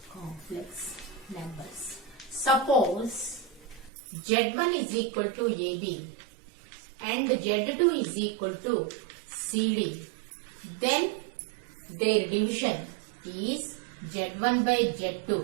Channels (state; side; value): drops out; left; at 3.9 s